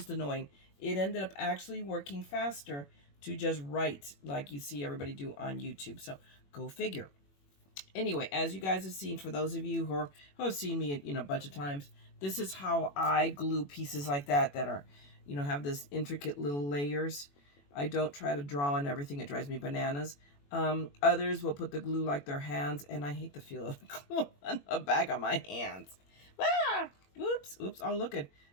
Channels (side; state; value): right; late; 21 ms